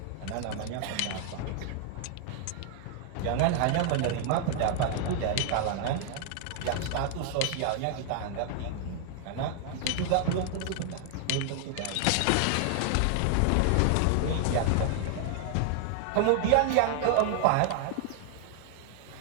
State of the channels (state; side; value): different; both; correlation 0.00